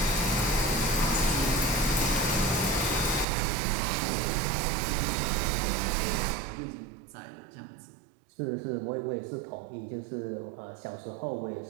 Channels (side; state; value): left; drops out; at 3.2 s